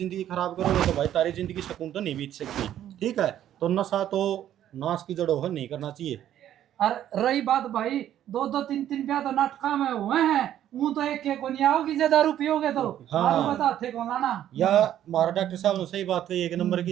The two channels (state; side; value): quieter; left; 11.4 dB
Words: खराब करोगे तो भाई तारी जिंदगी सुकून तो नहीं बीत सकती। ठीक है तो नशा तो नाश की जड़ों है नहीं करना चाहिए। और रही बात भाई दो दो तीन तीन ब्याह तो नाटका में हुए हैं वो तो एक को नहीं आओगी जे दारू पियोगे तो हाँ। दारू बता थे कौन लाना या हमारा डॉक्टर साहब ने सही बात कही एक नंबर